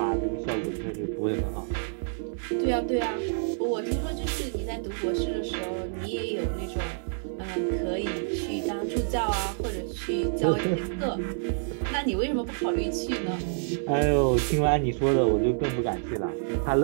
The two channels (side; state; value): left; silent; digital silence